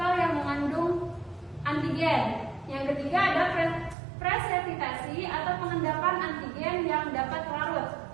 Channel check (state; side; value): drops out; left; at 4.0 s